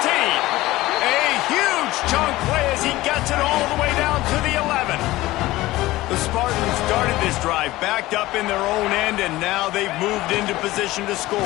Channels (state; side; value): quieter; right; 17.9 dB